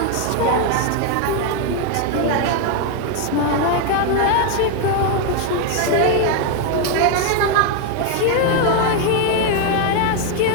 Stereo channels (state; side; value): different; both; correlation 0.01